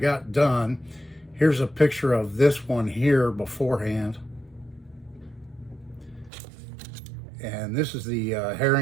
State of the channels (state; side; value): drops out; left; at 6.3 s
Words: done. Here's a picture of this one here beforehand. And this is the